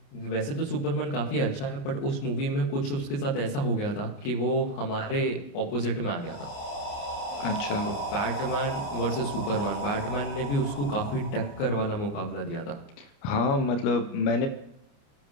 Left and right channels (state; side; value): late; right; 29 ms